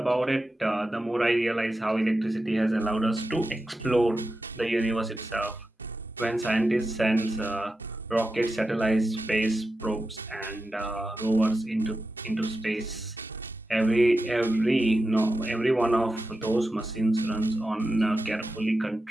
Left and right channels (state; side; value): normal; both; correlation 0.91